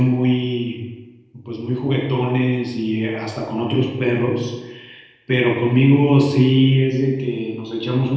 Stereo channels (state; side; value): identical; both; correlation 1.00